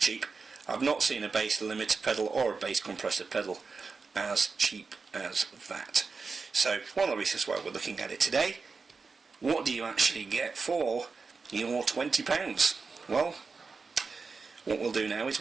I've not seen a bass limiter pedal or a bass compressor pedal as cheap as that. So one of the reasons why we're looking at it today, what do you actually get for your £20? Well, what we'll do now is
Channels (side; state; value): left; quieter; 4.6 dB